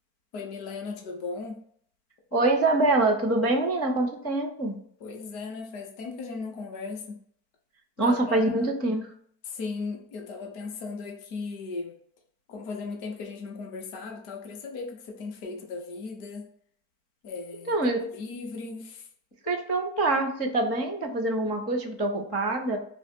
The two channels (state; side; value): late; right; 4.4 ms